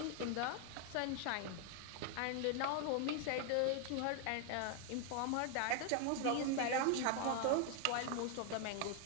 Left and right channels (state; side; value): different; both; correlation 0.00